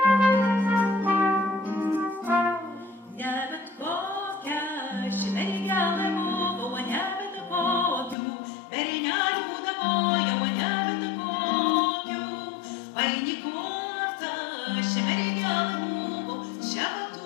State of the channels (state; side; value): drops out; right; at 8.2 s